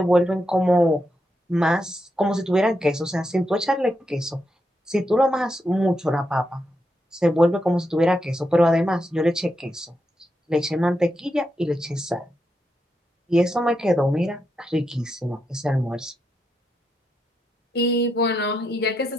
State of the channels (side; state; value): both; normal; correlation 0.83